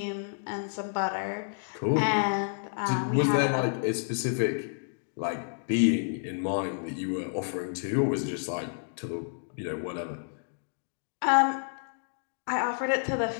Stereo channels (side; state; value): right; silent; digital silence